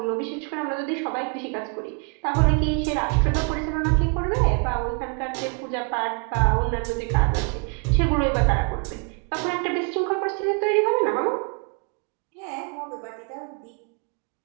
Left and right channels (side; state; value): left; quieter; 36.4 dB